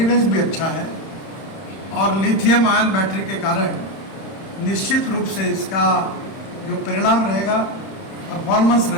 भी अच्छा है और लिथियम आयन बैटरी के कारण निश्चित रूप से इसका जो परिणाम रहेगा, परफॉर्मेंस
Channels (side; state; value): right; late; 31 ms